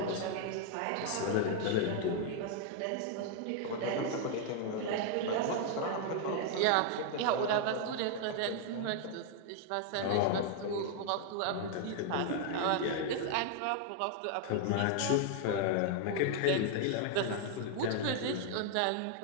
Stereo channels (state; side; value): different; both; correlation 0.00